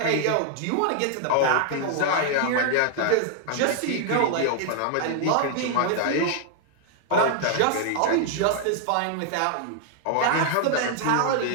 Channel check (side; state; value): both; different; correlation 0.00